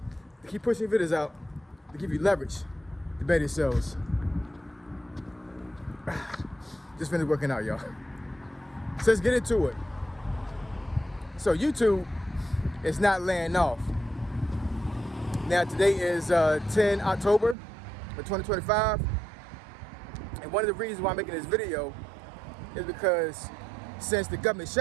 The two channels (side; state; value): left; drops out; at 17.6 s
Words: to keep pushing videos out to give you leverage to better yourselves. Just finished working out, y'all. So let's get into it. So YouTube is not laying off. Now today is 10 October of 2025. And one of the reasons why I'm making this video is because since the government